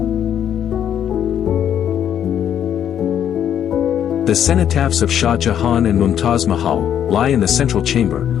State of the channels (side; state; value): right; quieter; 9.6 dB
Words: The cenotaphs of Shah Jahan and Mumtaz Mahal lie in the central chamber,